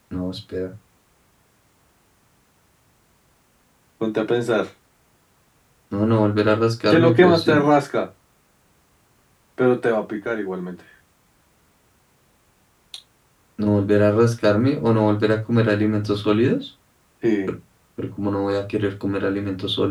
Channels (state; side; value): identical; both; correlation 1.00